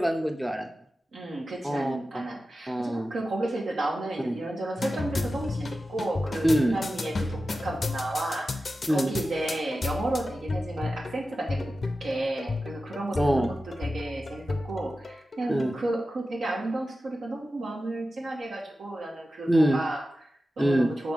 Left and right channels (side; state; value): both; normal; correlation 0.93